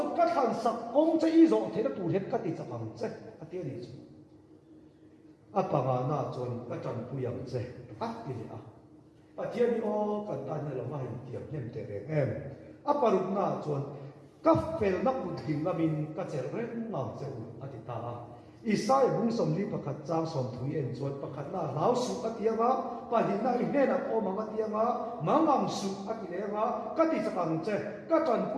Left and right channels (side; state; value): both; identical; correlation 1.00